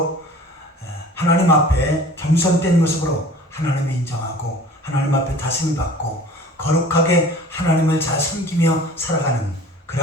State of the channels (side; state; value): both; normal; correlation 0.45